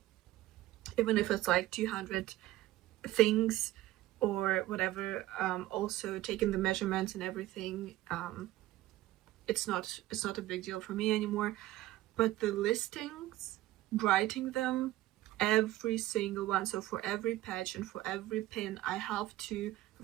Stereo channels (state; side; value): quieter; left; 16.0 dB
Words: even if it's like 200 things or whatever. Also taking the measurements and everything, it's not a big deal for me anymore. But the listings, writing them, every single one, so for every patch and for every pin I have to